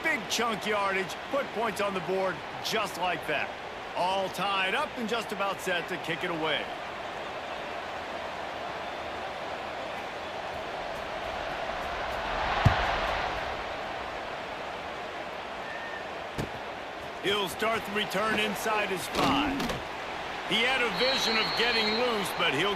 big chunk yardage, put points on the board just like that. All tied up and just about set to kick it away. He'll start the return inside his 5. He had a vision of getting loose, but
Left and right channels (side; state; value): both; identical; correlation 1.00